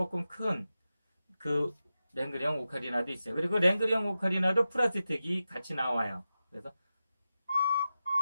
큰 그 랭그리형 오카리나도 있어요. 그리고 랭그리형 오카리나도 프라스틱이 같이 나와요. 그래서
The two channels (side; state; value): both; inverted; correlation -0.92